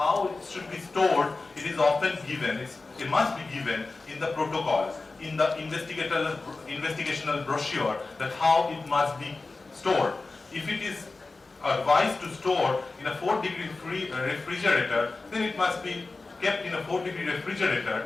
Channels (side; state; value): right; quieter; 3.6 dB